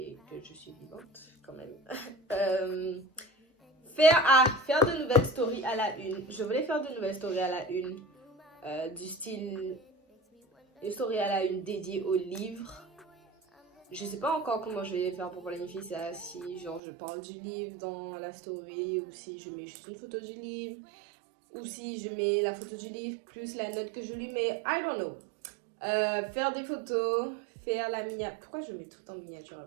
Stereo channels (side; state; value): left; drops out; at 16.8 s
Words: que je suis vivante quand même. Faire de nouvelles stories à la une. Je voulais faire de nouvelles stories à la une. Du style une story à la une dédiée au livre. Je sais pas encore comment je vais faire pour planifier ça, si genre je parle du livre dans la story ou si je mets juste une photo du livre ou si je mets la photo du livre plus la note que je lui mets, I don't know. Faire des photos, faire la miniature, pourquoi je mets tout en miniature